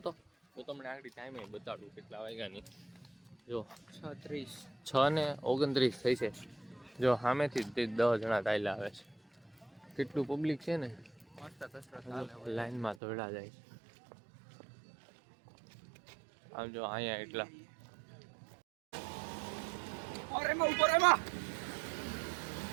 તો તમને આગળ ટાઈમે બતાડું કેટલા વાયગાની. જો 6:29 થઈ છે. જો સામેથી 10 જણા ચાલ્યા આવે છે. કેટલું પબ્લિક છે ને, લાઈનમાં દોડા જાય છે. આમ જો અહીંયા એટલા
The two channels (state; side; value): drops out; left; at 13.0 s